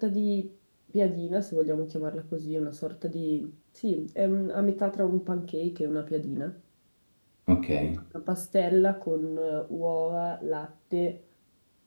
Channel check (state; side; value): inverted; both; correlation -1.00